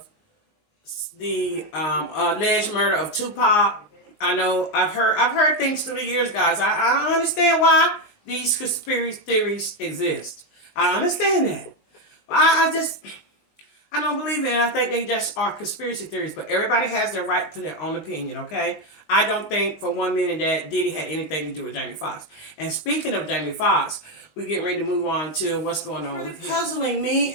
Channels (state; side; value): late; right; 19 ms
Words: the alleged murder of Tupac. I know I've heard things through the years, guys. I understand why these conspiracy theories exist. I understand that. But I don't believe it, and I think they just are conspiracy theories. But everybody has their right to their own opinion, okay? I don't think for 1 minute that Diddy had anything to do with Jamie Foxx. And speaking of Jamie Foxx, we're getting ready to move on to what's going on with him. Puzzling me